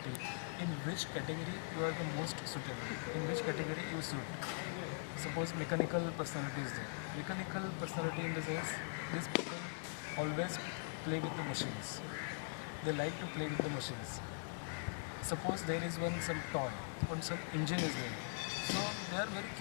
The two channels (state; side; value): silent; right; digital silence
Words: in which category you are the most suitable, in which category you suit. Suppose mechanical personality is there. Mechanical personality in the sense, these people always play with the machines. They like to play with the machines. Suppose there is some toy, some engine is there. So they are very